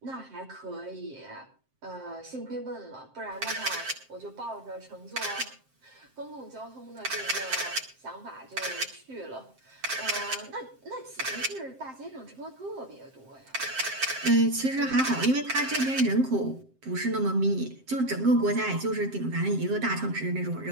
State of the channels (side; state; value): left; late; 7.6 ms